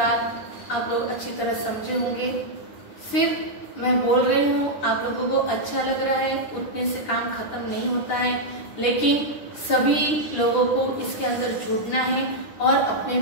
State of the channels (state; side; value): late; right; 9.8 ms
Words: आप लोग अच्छी तरह समझे होंगे। सिर्फ मैं बोल रही हूँ, आप लोगों को अच्छा लग रहा है, उतने से काम खत्म नहीं होता है, लेकिन सभी लोगों को इसके अंदर जुड़ना है और अपने